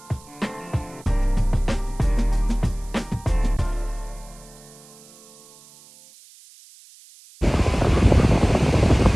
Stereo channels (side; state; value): right; noise; hiss, 24 dB below the sound